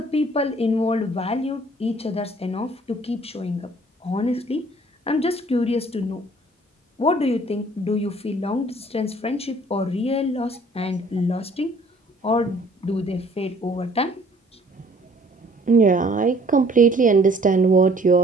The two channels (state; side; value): normal; both; correlation 0.57